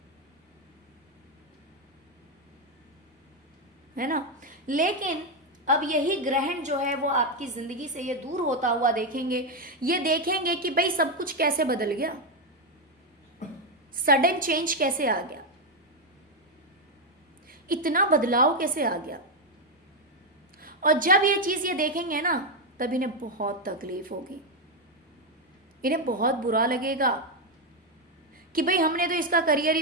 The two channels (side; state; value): both; normal; correlation 0.05